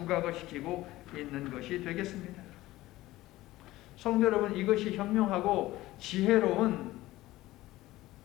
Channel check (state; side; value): quieter; right; 17.2 dB